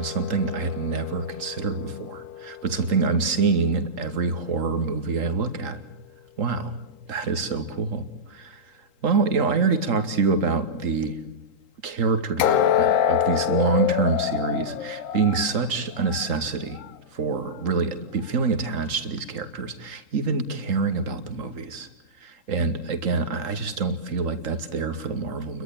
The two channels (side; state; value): left; late; 3.8 ms